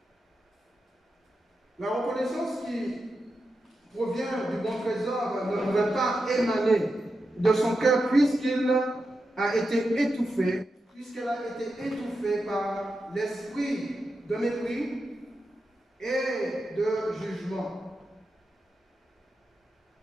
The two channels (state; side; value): normal; both; correlation 0.89